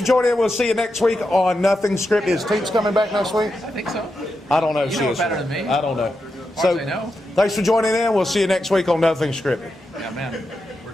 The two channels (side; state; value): both; normal; correlation 0.87